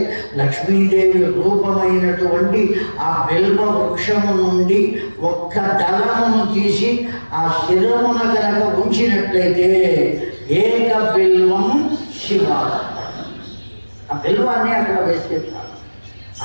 లక్ష్మీదేవి రూపమైనటువంటి ఆ బిల్వ వృక్షము నుండి ఒక్క దళమును తీసి ఆ శిరమున కనుక ఉంచినట్లయితే ఏక బిల్వం శివ, ఆ బిల్వాన్ని అక్కడ వేస్తే చాలు,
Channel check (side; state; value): both; inverted; correlation -1.00